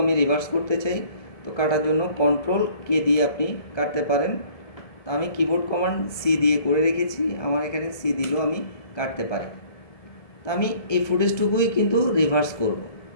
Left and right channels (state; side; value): late; right; 1.7 ms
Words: আমি রিভার্স করতে চাই। তো কাটার জন্য কন্ট্রোল কে দিয়ে আপনি কাটতে পারেন। তো আমি কিবোর্ড কমান্ড সি দিয়ে করে রেখেছি, আমার এখানে সি দিলেও আমি কাটতে পারি। তো আমি এই ফুটেজটুকুই কিন্তু রিভার্স করব।